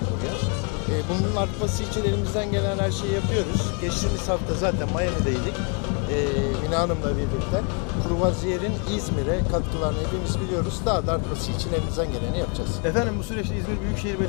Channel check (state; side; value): quieter; right; 37.5 dB